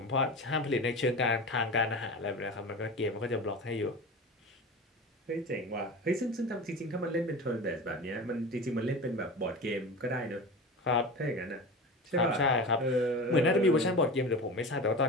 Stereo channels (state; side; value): normal; both; correlation 0.30